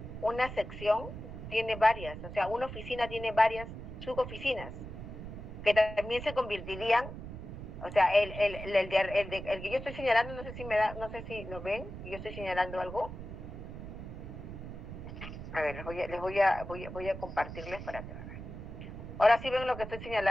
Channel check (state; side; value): noise; right; rumble, 10 dB below the sound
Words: una sección tiene varias, o sea, una oficina tiene varias suboficinas que también se convertirían, o sea, el que yo estoy señalando, no sé si lo ven, yo estoy señalando algo. A ver, voy a compartirles para que vean. Ahora sí ven lo que estoy